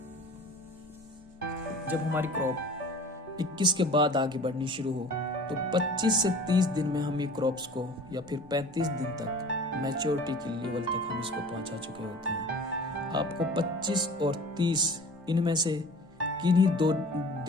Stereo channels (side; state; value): both; normal; correlation 0.43